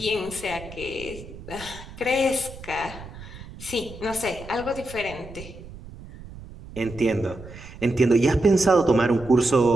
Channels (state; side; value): noise; right; rumble, 15 dB below the sound